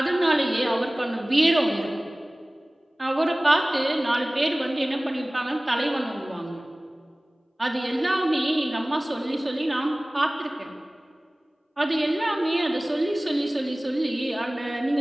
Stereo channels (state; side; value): normal; both; correlation 0.98